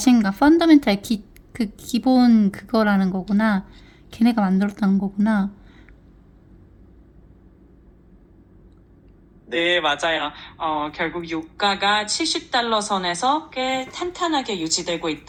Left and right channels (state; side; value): identical; both; correlation 1.00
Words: 펀더멘탈 그 기본 그거라는 거구나. 걔네가 만들었다는 거구나. 네, 맞아요. 결국 유가가 70달러 선에서 꽤 탄탄하게 유지되고